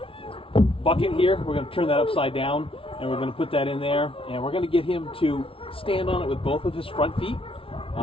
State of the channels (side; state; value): right; late; 0.26 ms